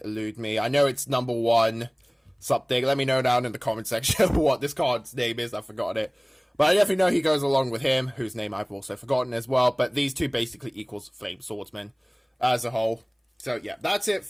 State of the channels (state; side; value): identical; both; correlation 1.00